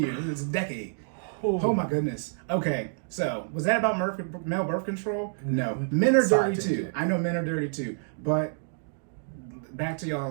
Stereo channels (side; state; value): left; silent; digital silence